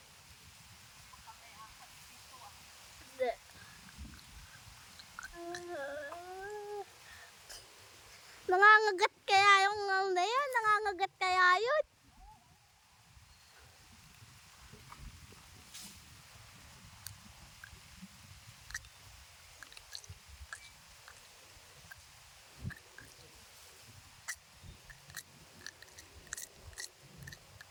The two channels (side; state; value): both; identical; correlation 1.00